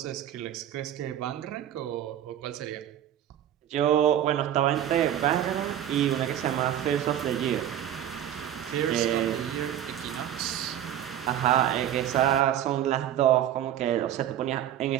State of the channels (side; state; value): left; quieter; 11.0 dB